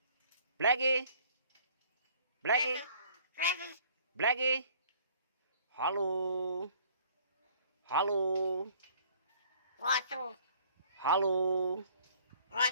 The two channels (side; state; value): both; inverted; correlation -0.56